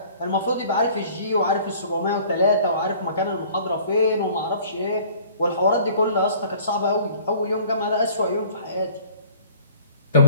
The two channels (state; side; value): inverted; both; correlation -0.52